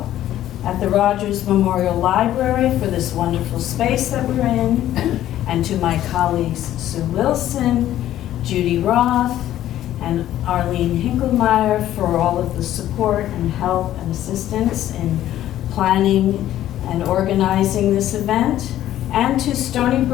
at the Rogers Memorial Library for this wonderful space that we're in, and to my colleagues Sue Wilson, Judy Roth, and Arlene Hinkelmeyer for all of the support and help and assistance in planning and organizing this event, and to Stony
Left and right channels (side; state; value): right; quieter; 12.8 dB